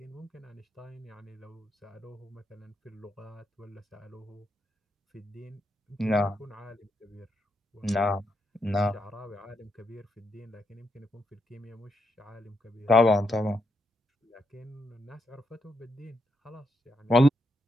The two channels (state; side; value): normal; both; correlation 0.80